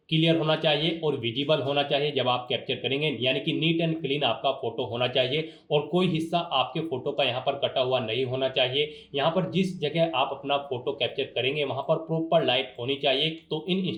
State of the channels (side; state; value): both; identical; correlation 1.00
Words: क्लियर होना चाहिए और विजिबल होना चाहिए जब आप कैप्चर करेंगे, यानी कि नीट एंड क्लीन आपका फोटो होना चाहिए और कोई हिस्सा आपके फोटो का यहाँ पर कटा हुआ नहीं होना चाहिए। यहाँ पर जिस जगह आप अपना फोटो कैप्चर करेंगे वहाँ पर प्रॉपर लाइट होनी चाहिए। तो इन